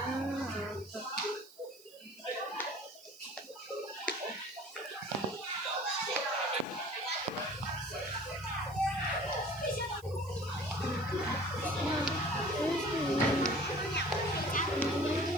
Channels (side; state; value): right; noise; hiss, 23 dB below the sound